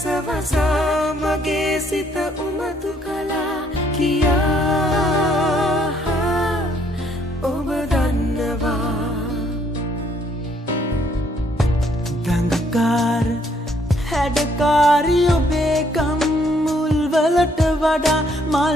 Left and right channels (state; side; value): normal; both; correlation 0.67